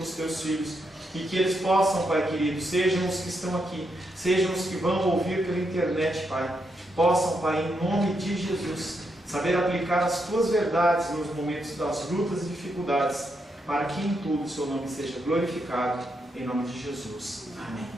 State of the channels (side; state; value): both; normal; correlation 0.81